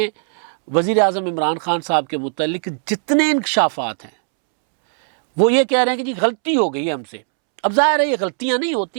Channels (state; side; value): silent; left; 67 dB below the other